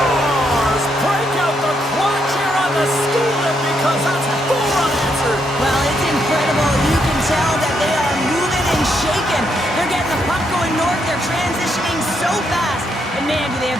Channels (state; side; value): normal; both; correlation 0.77